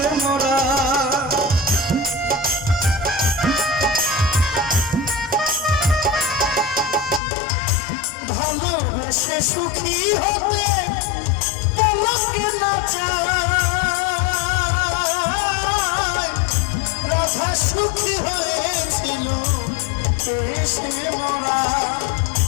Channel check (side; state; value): right; drops out; at 7.2 s